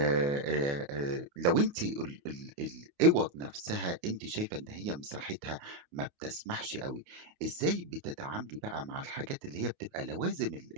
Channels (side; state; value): left; late; 28 ms